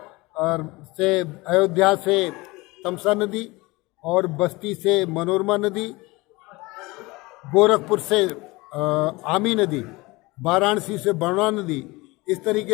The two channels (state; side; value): quieter; right; 22.7 dB